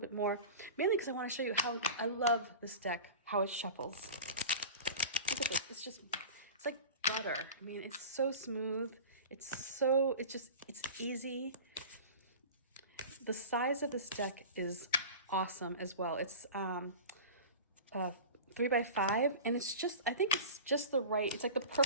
bit more, mainly because I want to show you how I love this deck, how it shuffles. Look at this. It's like butter. I mean, it's so smooth. It's easy. The size of this deck is awesome as well. It's 3x5, and I think it's just the right, it's like the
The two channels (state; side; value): inverted; both; correlation -0.34